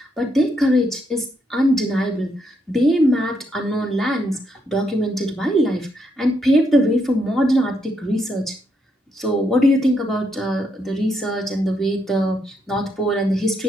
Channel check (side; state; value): both; normal; correlation 0.77